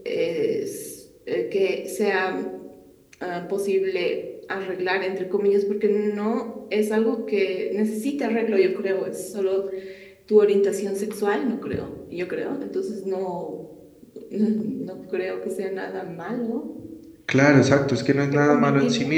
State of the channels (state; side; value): identical; both; correlation 1.00